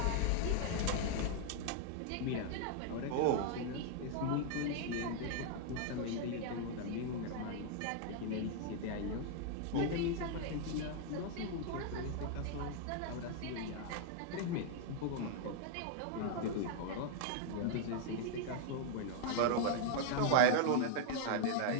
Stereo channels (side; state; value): both; different; correlation 0.00